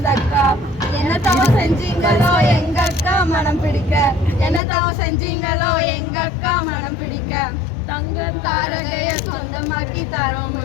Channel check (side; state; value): right; drops out; at 4.6 s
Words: என்ன தவம் செஞ்சீங்களோ எங்க அக்கா மனம் பிடிக்க என்ன தவம் செஞ்சீங்களோ எங்க அக்கா மனம் பிடிக்க தங்கம் தாரகைய சொந்தமாக்கி